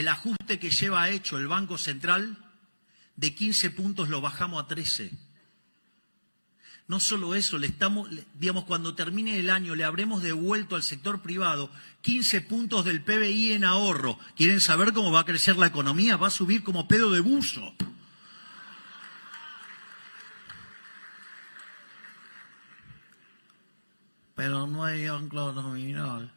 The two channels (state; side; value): inverted; both; correlation -1.00